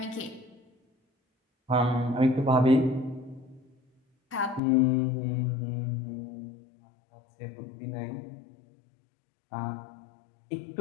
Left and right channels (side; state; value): right; drops out; at 4.6 s